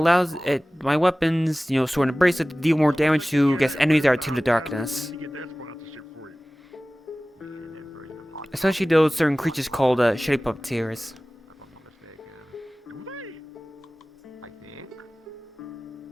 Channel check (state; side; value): normal; both; correlation 0.98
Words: my weapons, Sword and Bracelet, to deal more damage to, enemies that are to the darkness. Especially those certain creatures called Shitty Puppeteers.